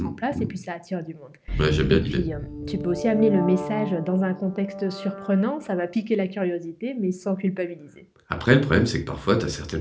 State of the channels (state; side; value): identical; both; correlation 1.00